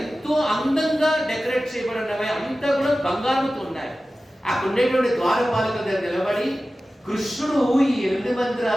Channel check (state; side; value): normal; both; correlation 0.95